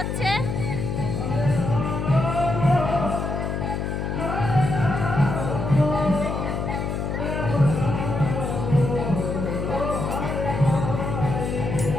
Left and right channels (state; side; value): noise; left; hum, 2 dB below the sound